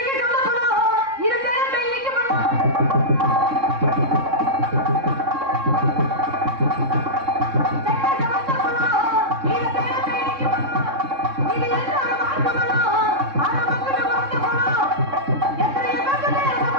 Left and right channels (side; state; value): left; late; 3.6 ms